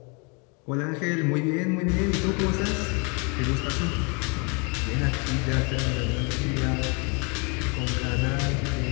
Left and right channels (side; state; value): right; quieter; 33.0 dB